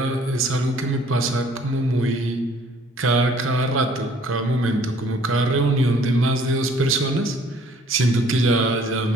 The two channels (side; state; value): both; normal; correlation 0.57